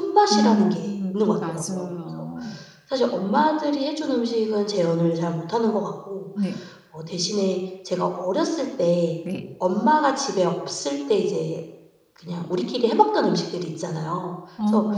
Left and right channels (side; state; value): both; identical; correlation 1.00